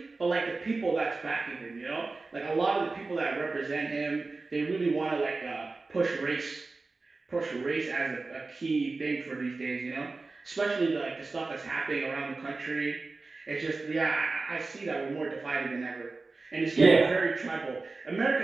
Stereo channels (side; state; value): left; quieter; 3.7 dB